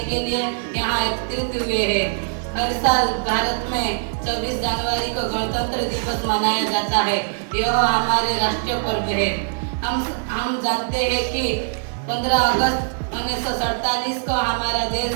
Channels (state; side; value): silent; left; digital silence